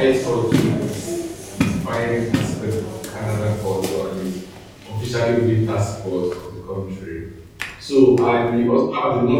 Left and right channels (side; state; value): both; identical; correlation 1.00